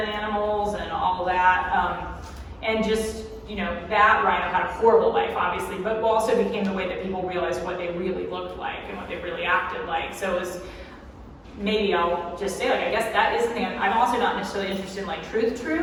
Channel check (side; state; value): both; identical; correlation 1.00